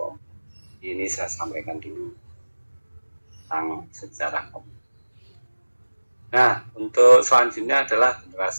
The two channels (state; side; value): inverted; both; correlation -1.00